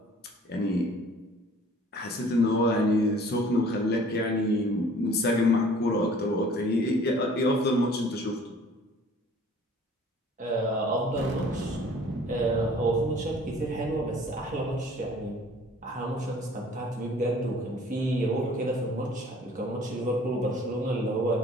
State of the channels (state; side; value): normal; both; correlation 0.52